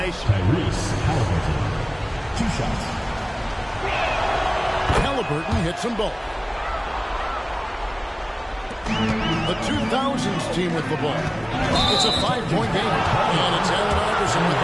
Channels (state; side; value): identical; both; correlation 1.00